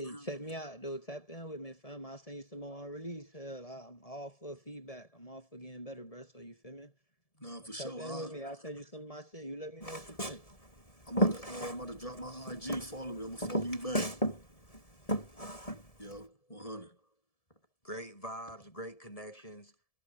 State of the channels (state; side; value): late; right; 1.7 ms